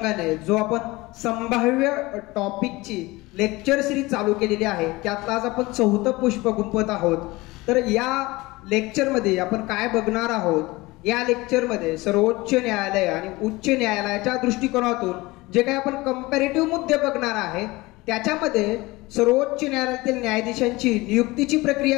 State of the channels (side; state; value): right; quieter; 21.4 dB